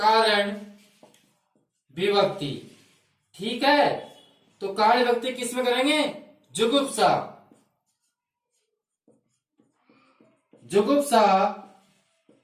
विभक्ति, ठीक है। तो कारण विभक्ति किसमें करेंगे, जुगुप्सा, जुगुप्सा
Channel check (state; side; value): identical; both; correlation 1.00